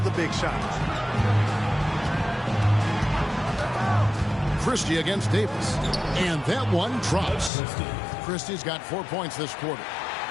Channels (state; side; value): drops out; right; at 7.5 s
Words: big shots. Christie against Davis. And that one drops. Christie's got 4 points this quarter.